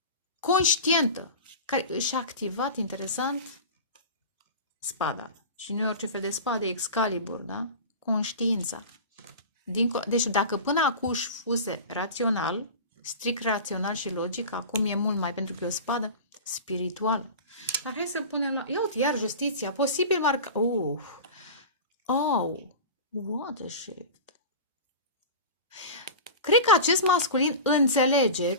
conștientă, care și-a activat, interesant, spada. Și nu e orice fel de spade, Excalibur, da? Conștiința. Deci dacă până acum fuse rațional, strict rațional și logic, acum e mult mai, pentru că e o spadă spirituală. Dar hai să punem la... Ia uite, iar justiția. Posibil marca... What a shift. Cred că acest masculin înțelege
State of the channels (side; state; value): both; inverted; correlation -0.31